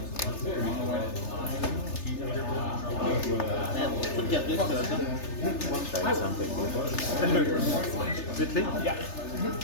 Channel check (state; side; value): late; right; 3.3 ms